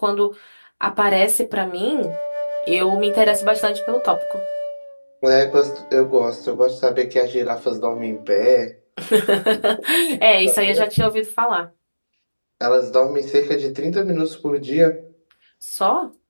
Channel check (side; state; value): both; inverted; correlation -1.00